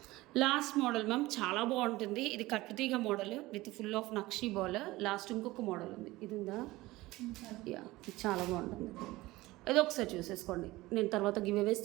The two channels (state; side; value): quieter; left; 19.2 dB